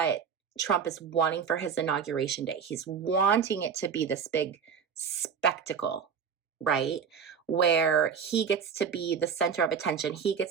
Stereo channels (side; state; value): left; quieter; 6.8 dB